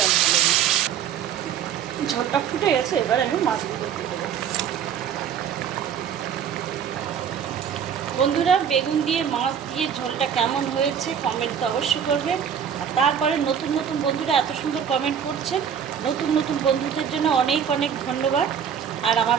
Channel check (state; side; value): quieter; left; 8.3 dB